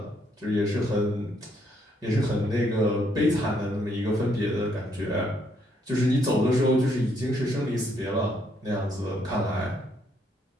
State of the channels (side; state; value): both; normal; correlation 0.72